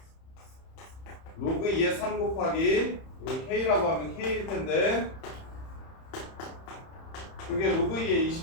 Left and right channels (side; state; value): right; late; 31 ms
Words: 로그 2의 3 곱하기 이거 k라고 하면 k일 텐데 그게 로그 2의